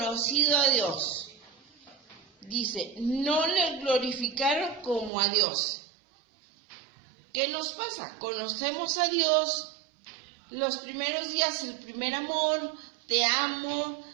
a Dios, dice, no le glorificaron como a Dios. ¿Qué nos pasa? Conocemos a Dios, los primeros días, el primer amor, te amo,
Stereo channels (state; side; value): drops out; left; at 5.1 s